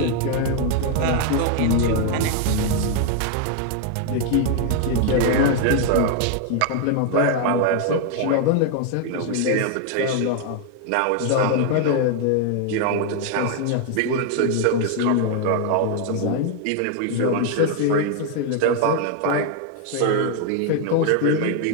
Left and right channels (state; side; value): different; both; correlation 0.00